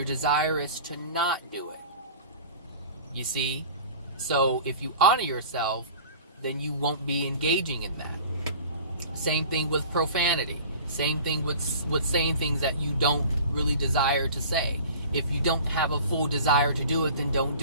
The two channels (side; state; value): both; inverted; correlation -0.42